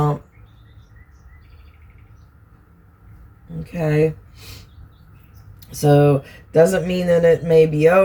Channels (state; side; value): identical; both; correlation 1.00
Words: Okay, so doesn't mean that it may be